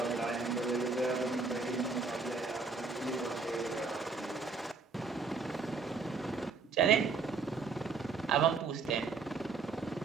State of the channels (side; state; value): left; quieter; 4.5 dB